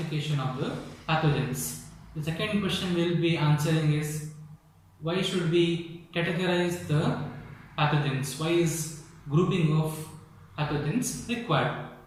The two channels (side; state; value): both; identical; correlation 1.00